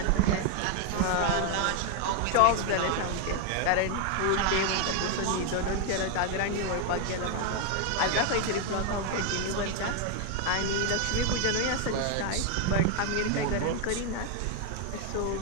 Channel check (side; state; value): both; different; correlation 0.01